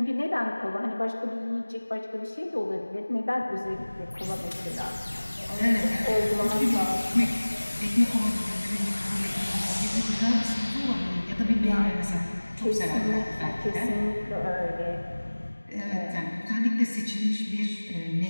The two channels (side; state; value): both; inverted; correlation -1.00